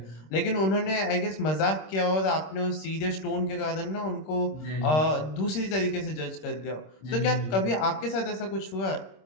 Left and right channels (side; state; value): right; late; 26 ms